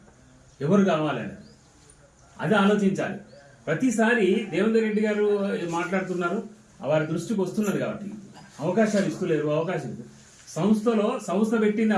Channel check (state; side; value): identical; both; correlation 1.00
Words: ఎవరు కావాలని. అది ఆలోచించాలి. ప్రతిసారి దేవేందర్ రెడ్డి గారు మాట్లాడుతున్నారు, వారి దృష్టికి వస్తున్నది కాబట్టి అవకాశాలు ఇస్తలేరు. అవకాశాలు సంస్థ పెట్టింది